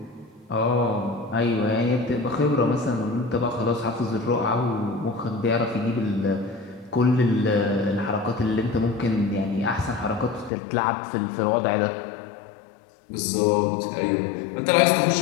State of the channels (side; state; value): right; drops out; at 10.5 s